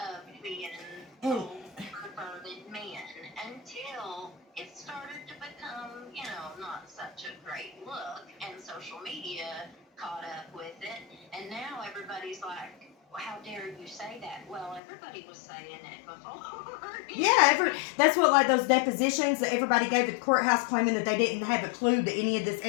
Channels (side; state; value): right; drops out; at 14.8 s